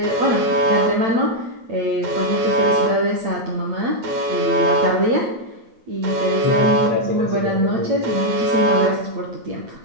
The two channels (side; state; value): left; late; 8.8 ms